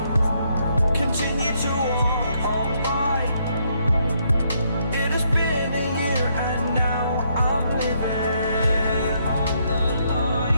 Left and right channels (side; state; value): both; inverted; correlation -0.73